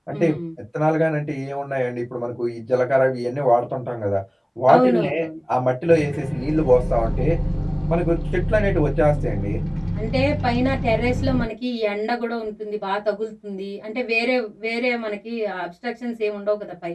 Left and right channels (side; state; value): both; identical; correlation 1.00